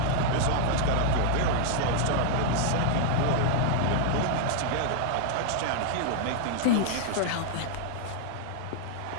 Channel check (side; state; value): both; different; correlation 0.00